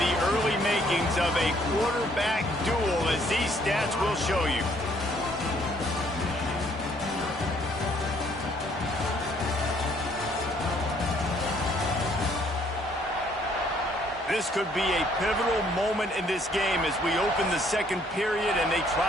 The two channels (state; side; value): normal; both; correlation 0.64